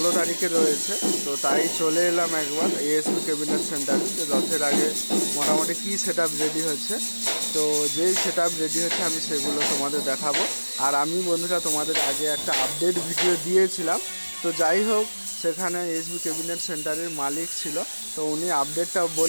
তারিখে রয়েছে, তো তাই চলে এলাম একবার এএসবি ক্যাবিনেট সেন্টারে যে রথের আগে মোটামুটি কী সেট আপ রেডি হচ্ছে। তো যেই সেট আপ রেডি হচ্ছে আমি সেগুলো তোমাদের দেখাবো। আর আমি বন্ধুরা তোমাদের আগে একটা আপডেট ভিডিও দিয়েছিলাম। তো যাই হোক, সেখানে এসবি ক্যাবিনেট সেন্টারের মালিক ছিল, তো উনি আপডেটটা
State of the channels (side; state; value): both; inverted; correlation -1.00